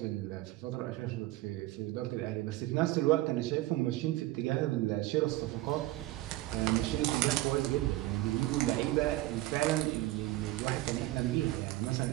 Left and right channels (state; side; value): quieter; left; 17.5 dB